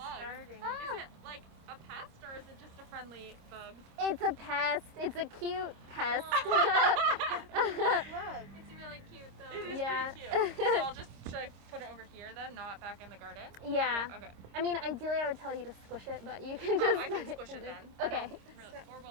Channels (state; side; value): late; left; 26 ms